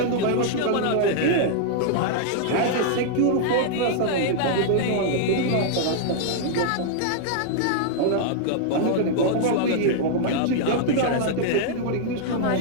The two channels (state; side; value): different; both; correlation -0.01